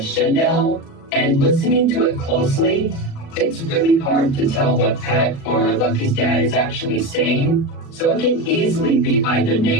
Chanel, and listening to it closely, it's really hard to tell what Pat or Lucky's dad is actually saying, so it can easily be either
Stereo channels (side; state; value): right; late; 37 ms